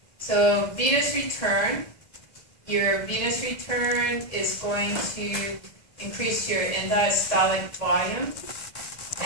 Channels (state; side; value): late; right; 1.7 ms